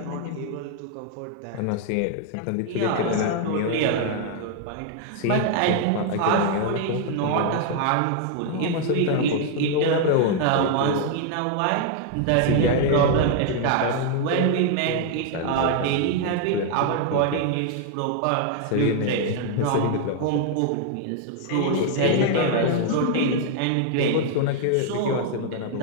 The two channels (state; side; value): different; both; correlation 0.00